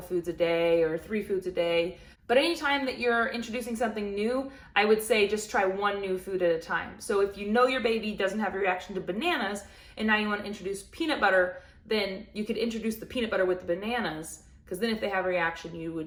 a day or 3 foods a day. But anytime that you're introducing something new, I would say just try one new food at a time. So if you know your baby doesn't have a reaction to bananas and now you want to introduce peanut butter, then you could introduce the peanut butter with the bananas, because then if they have a reaction, you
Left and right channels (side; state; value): both; identical; correlation 1.00